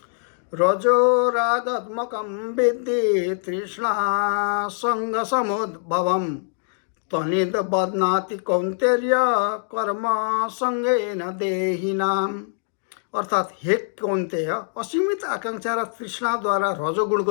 रजो रागात्मकं विद्धि तृष्णा सङ्गसमुद्भवं तनिद बध्नाति कौन्तेय कर्म सङ्गेन देहिनाम्। अर्थात् हे कौन्तेय, असीमित आकांक्षा र तृष्णाद्वारा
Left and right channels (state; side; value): silent; right; digital silence